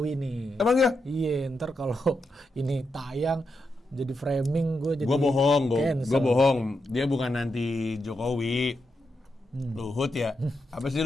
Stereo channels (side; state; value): both; normal; correlation 0.85